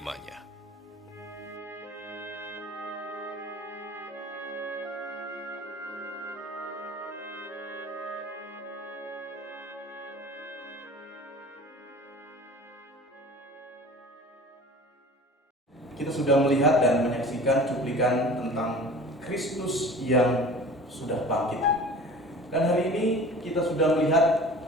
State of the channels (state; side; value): normal; both; correlation 0.42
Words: Kita sudah melihat dan menyaksikan cuplikan tentang Kristus yang sudah bangkit. Dan hari ini kita sudah melihat